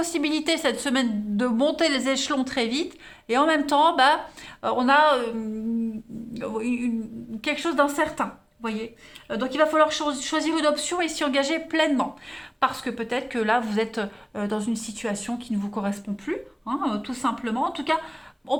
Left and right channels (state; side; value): identical; both; correlation 1.00